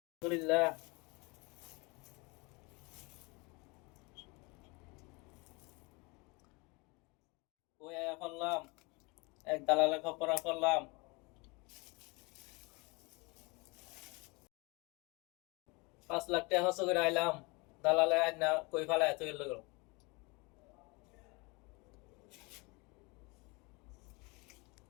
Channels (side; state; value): right; quieter; 27.5 dB